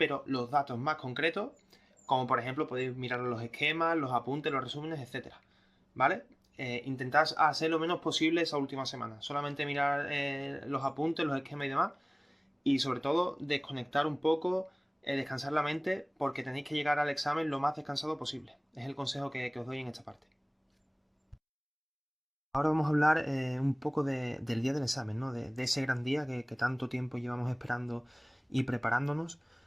los datos más concretos, como por ejemplo podéis mirar los esquemas, los apuntes, los resúmenes, etcétera. ¿Vale? Intentad hacer lo menos posible esa última semana. Solamente mirar los apuntes, los esquemas y demás, y sobre todo desconectar un poco, descansar la mente, porque tenéis que llegar al examen lo más descansado posible. Es el consejo que os doy en esta parte. Ahora vamos a hablar un poco del día del examen, ¿no? De ese gran día que tanto tiempo llevamos esperando y preparándonos.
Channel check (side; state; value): both; identical; correlation 1.00